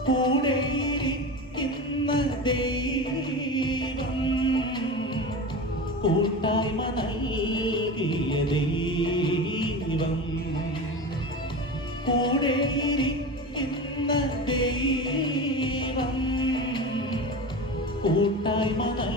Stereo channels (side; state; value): both; normal; correlation 0.28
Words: കൂടെയിരിക്കുന്ന ദൈവം, കൂട്ടായ്മ നൽകിയ ദൈവം, കൂടെയിരിക്കുന്ന ദൈവം, കൂട്ടായ്മ